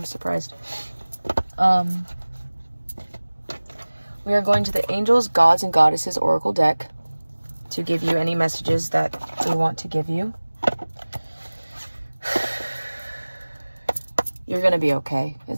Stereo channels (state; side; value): inverted; both; correlation -1.00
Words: surprised. We are going to the Angels, Gods, and Goddesses Oracle deck to give you any messages that they want to give you. You're going to be okay.